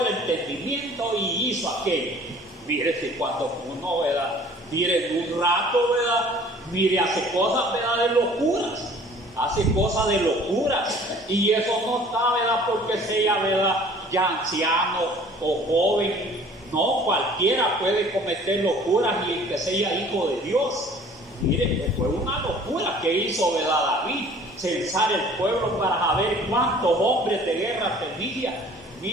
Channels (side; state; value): both; normal; correlation 0.51